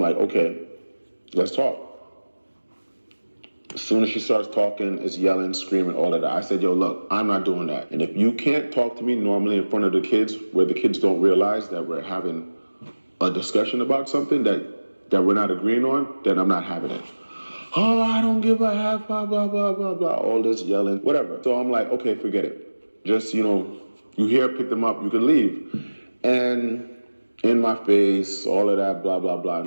okay, let's talk. As soon as she starts talking, it's yelling, screaming, all of that. I said, yo, look, I'm not doing that. And if you can't talk to me normally in front of the kids, where the kids don't realize that we're having a discussion about something that we're not agreeing on, then I'm not having it. Oh, I don't give a half, blah, blah, blah, blah, blah, all this yelling, whatever. So I'm like, okay, forget it. Just, you know, you here, pick them up, you can leave. And in my face, all of that, blah, blah, blah,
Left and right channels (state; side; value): inverted; both; correlation -1.00